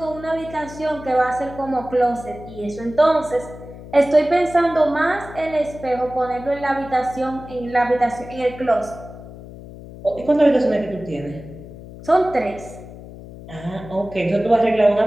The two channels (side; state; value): left; noise; hum, 15 dB below the sound